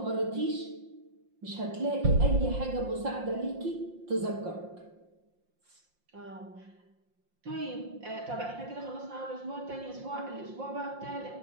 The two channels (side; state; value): left; late; 5.7 ms